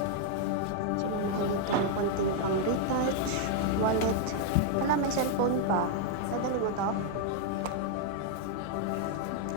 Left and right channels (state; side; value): different; both; correlation 0.00